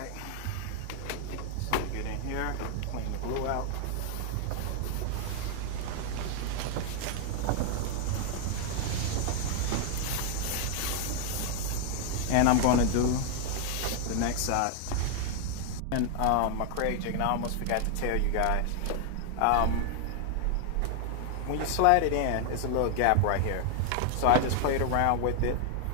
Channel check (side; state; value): both; different; correlation 0.00